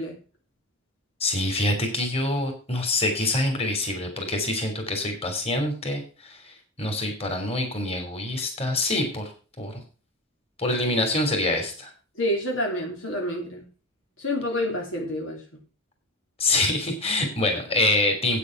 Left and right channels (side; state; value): both; normal; correlation 0.26